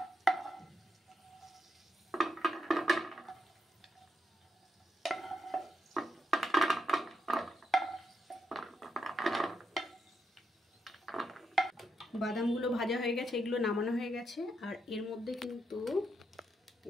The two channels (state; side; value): normal; both; correlation 0.81